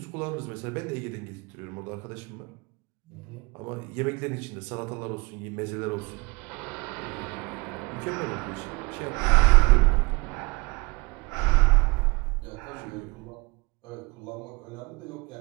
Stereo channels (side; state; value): left; quieter; 27.0 dB